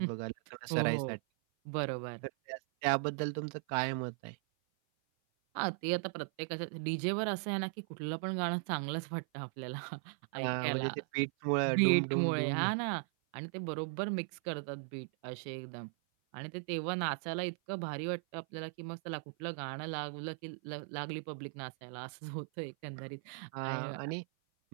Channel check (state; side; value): silent; left; 53 dB below the other